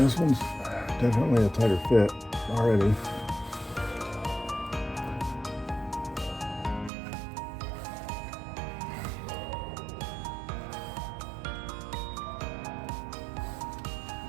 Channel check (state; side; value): drops out; left; at 6.9 s